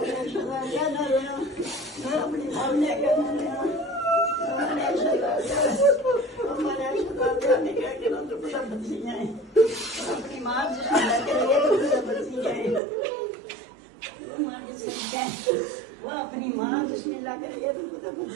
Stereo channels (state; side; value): drops out; left; at 12.8 s